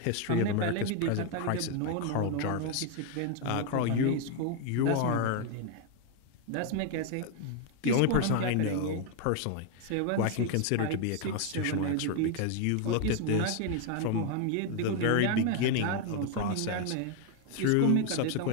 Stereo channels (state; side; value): different; both; correlation 0.01